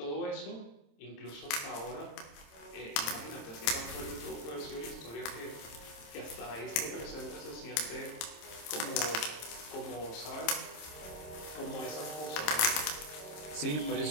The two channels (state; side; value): late; right; 26 ms